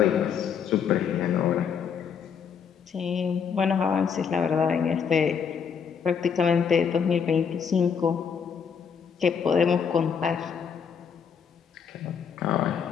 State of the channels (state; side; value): quieter; right; 6.9 dB